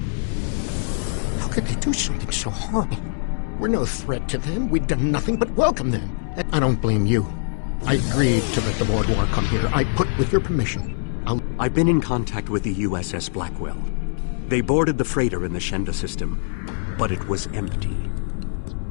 How could they do something so horrible? We're no threat to them. We've done nothing but welcome them. I don't blame you. I agreed to let the Vaudouar come here. I put with your permission. I've been in contact with the USS Blackwell. They boarded the freighter in the Shenda system, but it was empty.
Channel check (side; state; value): right; silent; 63 dB below the other